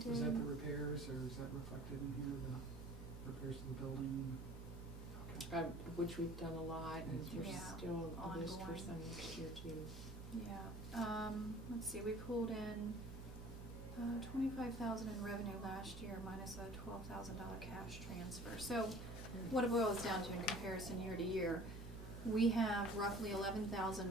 Was that the repairs or is that reflected in here, the repairs to the building? Okay. Which we've done a lot, and there's Yeah, still a list for ongoing. some next year too. Yeah, let's see, we pulled in 25,000 in revenue last year minus a $12,000 cash transfer. So what it boils down to in comparison year to year, we have roughly 11,000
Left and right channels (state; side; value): normal; both; correlation 0.47